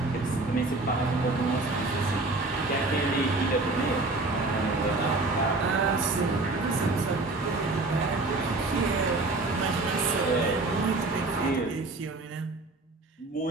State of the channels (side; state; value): left; quieter; 3.1 dB